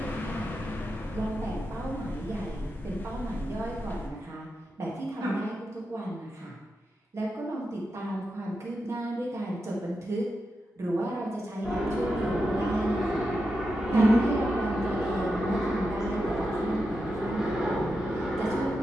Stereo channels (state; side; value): normal; both; correlation 0.88